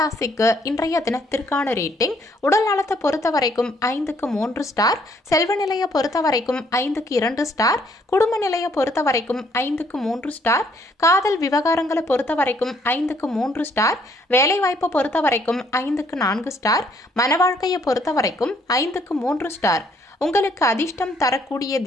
ராசிக்கு இன்றைய தினத்திற்கான ரேட்டிங். உடல் நலத்தை பொறுத்த வரைக்கும் 5க்கு 3 ஸ்டார். செல்வ நிலையை பொறுத்த வரைக்கும் 5க்கு 2 ஸ்டார். குடும்ப நிலையை பொறுத்த வரைக்கும் 5க்கு 3 ஸ்டார். காதல் விவகாரங்களை பொறுத்த வரைக்கும் 5க்கு 3 ஸ்டார். வேலை வாய்ப்பை பொறுத்த வரைக்கும் 5க்கு 4 ஸ்டார். மன வாழ்க்கையை பொறுத்த வரைக்கும் 5க்கு 3 ஸ்டார். உங்களுக்கு அதிர்ஷ்டம் தரக்கூடிய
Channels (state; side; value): normal; both; correlation 0.67